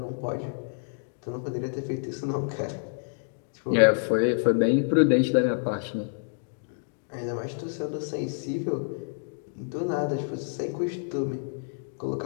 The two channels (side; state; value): right; silent; digital silence